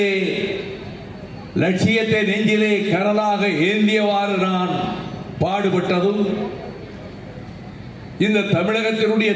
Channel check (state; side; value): identical; both; correlation 1.00